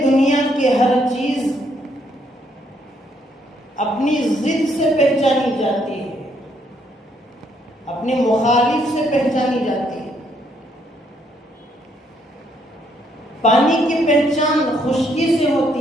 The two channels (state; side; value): normal; both; correlation 0.71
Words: دنیا کی ہر چیز اپنی ضد سے پہچانی جاتی ہے، اپنے مخالف سے پہچانی جاتی ہے، پانی کی پہچان خشکی سے